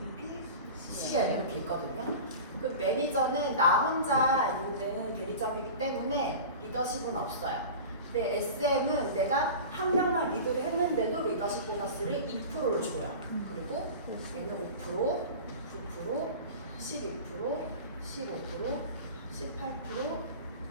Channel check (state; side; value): inverted; both; correlation -0.34